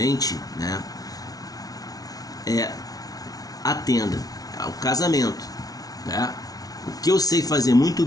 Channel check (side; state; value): right; late; 0.18 ms